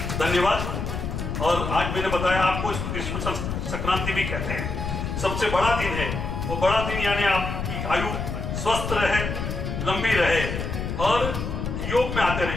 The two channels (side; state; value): left; noise; rumble, 4 dB below the sound